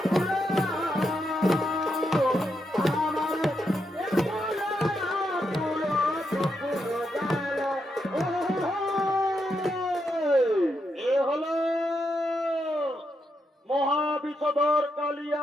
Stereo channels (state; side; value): normal; both; correlation 0.82